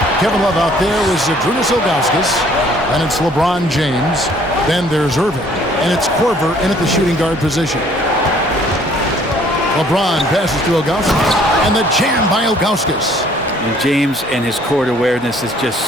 Kevin Love out there was Zydrunas Ilgauskas, and it's LeBron James. Then there's Irving. And it's Korver in at the shooting guard position. LeBron passes to Ilgauskas, and the jam by Ilgauskas. And James and his court awareness is just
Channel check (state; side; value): normal; both; correlation 0.59